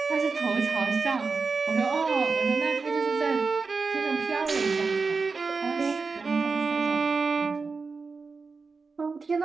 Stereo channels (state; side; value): quieter; left; 4.5 dB